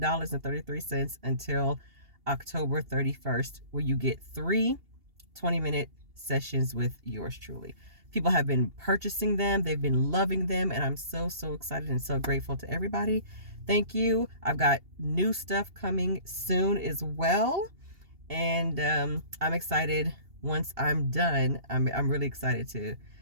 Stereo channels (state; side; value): late; left; 2.8 ms